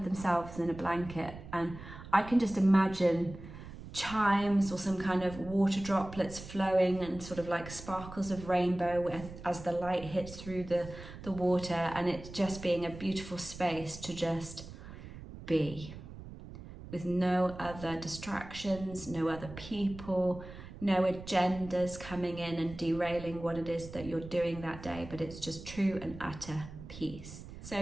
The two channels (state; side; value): noise; right; rumble, 14 dB below the sound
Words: themselves in a blanket. And I can just imagine chimes or some kind of water droplets flowing and sort of like sparkles of rainbow as the light hits through the water, and it just being a beautiful space to just be with no other distractions, no other people, no agendas coming in and derailing what it is that you're doing that day, but it's just true and utter peace.